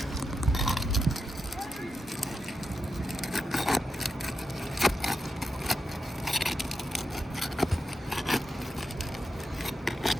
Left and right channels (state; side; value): normal; both; correlation 0.87